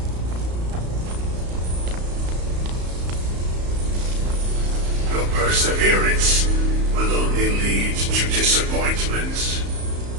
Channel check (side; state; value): left; late; 34 ms